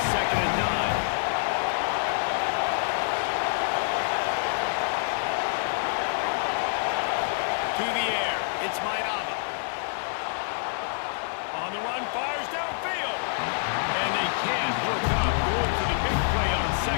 2nd and 9. To the air. It's Mayava. On the run, fires downfield. And they can't hook up. Going for the big play on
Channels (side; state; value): right; silent; 60 dB below the other